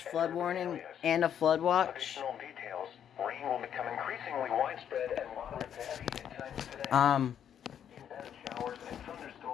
flood warning and a flood watch. Rain will become increasingly widespread and moderate to heavy at times today.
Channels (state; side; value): quieter; right; 9.1 dB